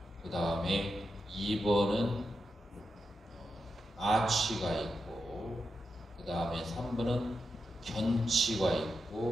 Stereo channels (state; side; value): normal; both; correlation 0.87